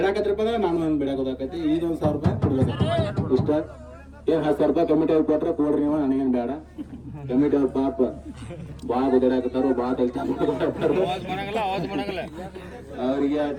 ಅಂದ್ರೆ ನಾನು ನನ್ನ ಬೇಡಾಕ ಹೋದಾಕೈತಿ ಈಗ 1,000 ರೂಪಾಯಿ ಕೊಡ್ಬೇಕು ಇಷ್ಟ ಏನು 10,000 ರೂಪಾಯಿ ಕಮಿಟಿ ಅವ್ರು ಕೊಟ್ರೆ ಕೊಡ್ರಿ ನೀವು ನನಗೇನು ಬೇಡ ಕಮಿಟಿ ಅವ್ರ ಪಾಪ ಭಾಳ ಗುದ್ದಾಡಕತ್ತಾರು ಭಾಳ ಅವ್ರಿಗೆ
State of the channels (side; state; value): both; identical; correlation 1.00